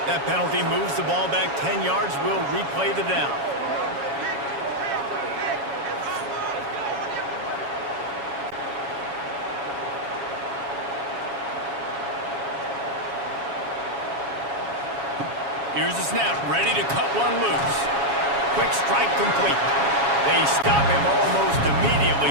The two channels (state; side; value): late; left; 7.2 ms